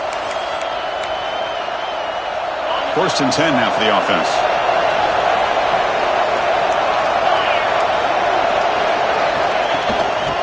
First and 10 now for the offense.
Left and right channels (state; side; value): identical; both; correlation 1.00